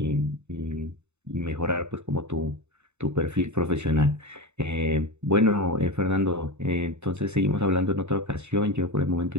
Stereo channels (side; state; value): left; late; 0.82 ms